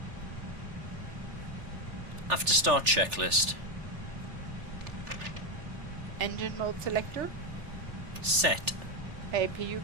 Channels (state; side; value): late; left; 3.4 ms